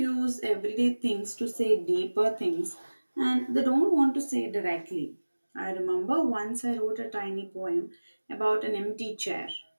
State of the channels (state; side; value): inverted; both; correlation -1.00